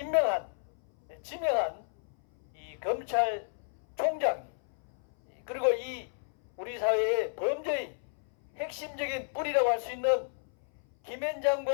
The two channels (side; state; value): right; silent; 56 dB below the other